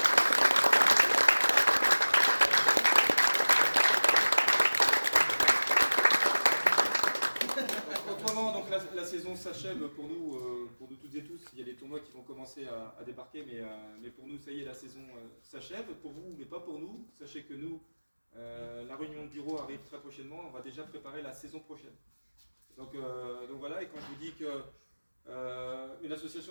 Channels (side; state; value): both; inverted; correlation -1.00